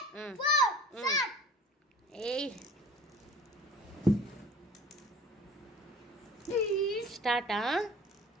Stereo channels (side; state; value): both; normal; correlation 0.43